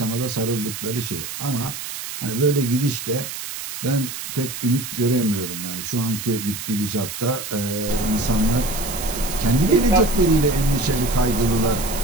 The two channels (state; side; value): noise; right; hiss, 8 dB below the sound